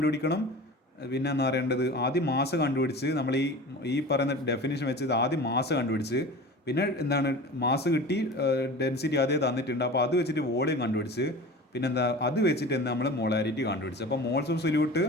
പിന്നെ എന്താ പറയേണ്ടത്, ആദ്യം മാസ് കണ്ടുപിടിച്ച് നമ്മൾ ഈ പറയുന്ന ഡെഫിനിഷൻ വെച്ച് ആദ്യം മാസ് കണ്ടുപിടിച്ച്, പിന്നെ എന്താണ് മാസ് കിട്ടി, ഡെൻസിറ്റി അതേ തന്നിട്ടുണ്ട്, അപ്പോൾ അത് വെച്ചിട്ട് വോളിയം കണ്ടുപിടിച്ച്, പിന്നെന്താ അത് വെച്ചിട്ട് എന്താ നമ്മൾ മോളാരിറ്റി കണ്ടുപിടിച്ച്. അപ്പോൾ മോൾസ് ഓഫ് സൊല്യൂട്ട്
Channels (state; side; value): normal; both; correlation 0.36